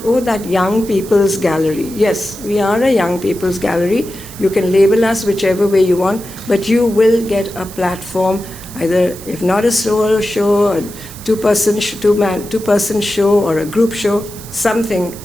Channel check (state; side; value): noise; right; hiss, 16 dB below the sound